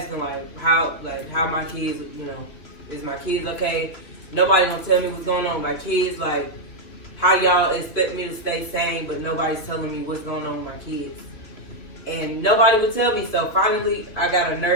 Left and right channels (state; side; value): late; right; 3.2 ms